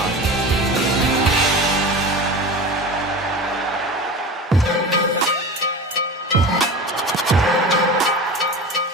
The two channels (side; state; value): both; normal; correlation 0.31